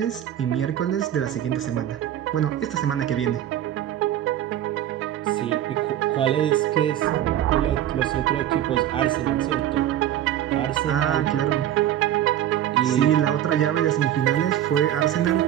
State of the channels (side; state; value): left; quieter; 11.6 dB